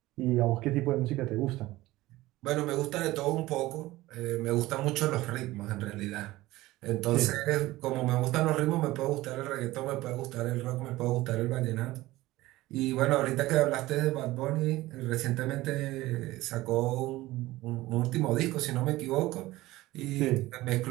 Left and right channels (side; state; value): left; quieter; 17.9 dB